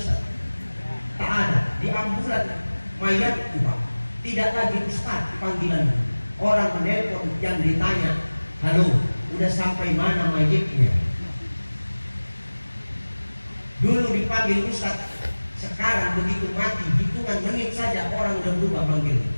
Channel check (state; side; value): inverted; both; correlation -1.00